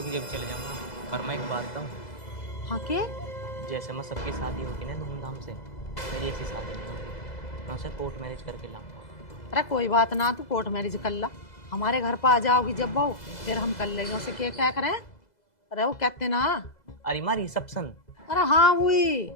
कि जब चले जाऊंगा। पर मैं एक बात बताऊं, हाँ के? जैसे मैं सबकी शादी होगी ना धूमधाम से, मेरी ऐसी शादी नहीं होगी। मैं उसे कोर्ट मैरिज करके लाऊंगा। अरे कोई बात ना, तू कोर्ट मैरिज कर ला, हमारे घर पर आ जाओगी जब बहू, फिर हम कर लेंगे उसे। क्या करें? अरे वो कहते ना, अरे माँ रिसेप्शन। अरे हाँ वही।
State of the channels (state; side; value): late; right; 2.0 ms